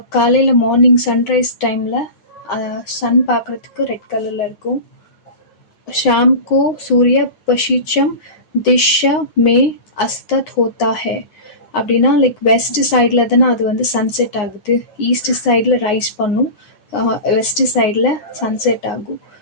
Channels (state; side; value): late; right; 9.7 ms